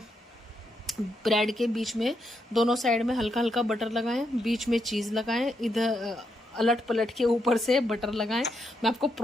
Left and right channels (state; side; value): normal; both; correlation 0.80